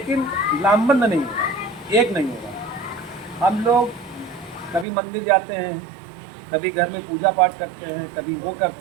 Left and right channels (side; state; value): left; drops out; at 4.9 s